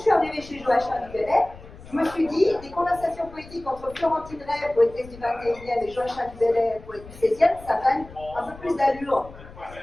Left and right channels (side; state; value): left; noise; rumble, 18 dB below the sound